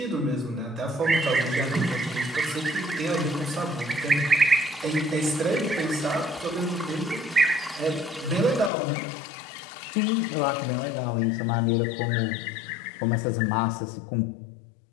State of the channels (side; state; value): right; drops out; at 8.7 s